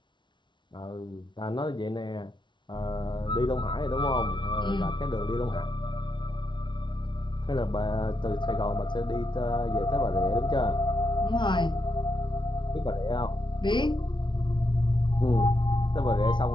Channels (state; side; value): late; right; 0.23 ms